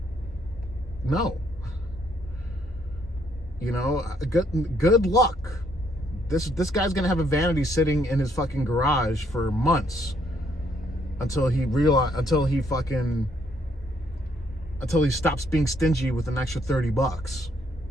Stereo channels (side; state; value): both; normal; correlation 0.70